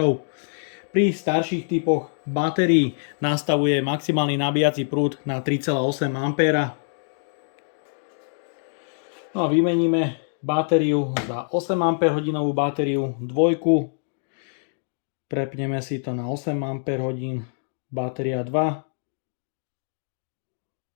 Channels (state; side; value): silent; right; digital silence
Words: Pri starších typoch batérií nastavuje maximálny nabíjací prúd na 3,8 A. No a vymeníme batériu za 8 Ah batériu dvojku. Prepneme si to na 8 Ah, batéria 2.